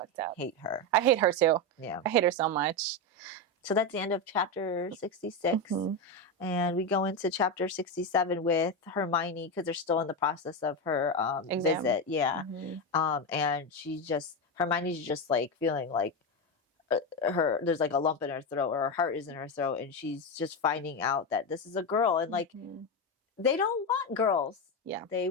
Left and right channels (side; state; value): both; normal; correlation 0.12